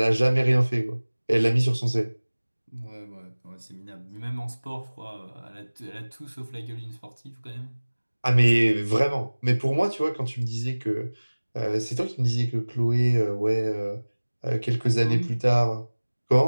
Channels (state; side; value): inverted; both; correlation -1.00